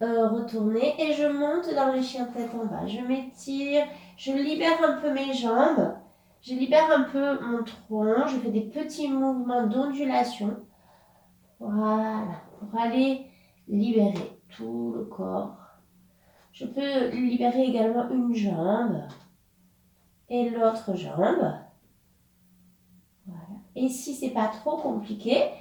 retournés et je monte dans le chien tête en bas. Je m'étire. Je libère un peu mes jambes. Je libère un peu mon tronc. Je fais des petits mouvements d'ondulation. Voilà. Pour aller libérer tout le corps. Je peux libérer également une jambe et l'autre jambe. Voilà. Et si c'est pas trop compliqué,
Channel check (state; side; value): identical; both; correlation 1.00